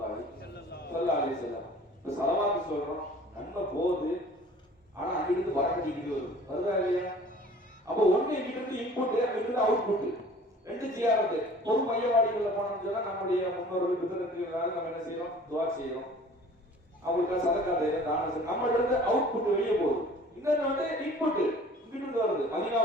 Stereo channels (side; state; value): both; normal; correlation 0.48